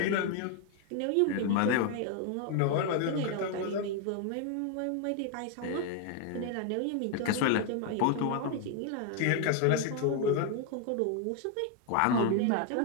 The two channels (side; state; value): both; different; correlation 0.01